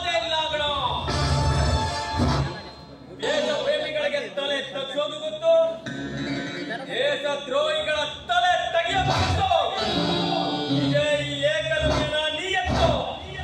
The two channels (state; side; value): identical; both; correlation 1.00